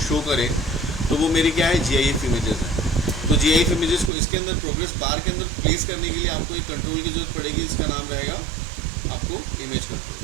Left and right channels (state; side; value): drops out; left; at 4.1 s